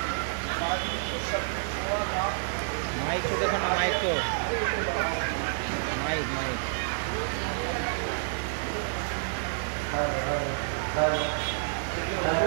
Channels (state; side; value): silent; left; digital silence